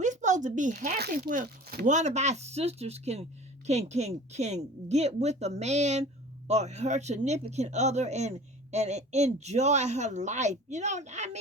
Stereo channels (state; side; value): normal; both; correlation 0.42